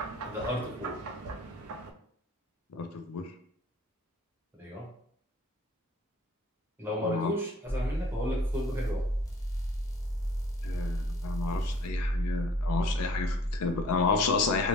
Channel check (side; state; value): both; normal; correlation 0.53